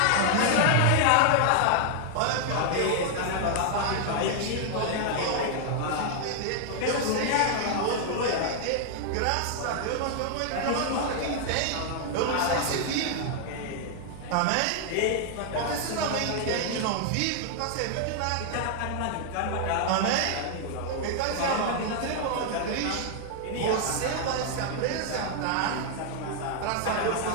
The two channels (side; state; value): both; different; correlation 0.00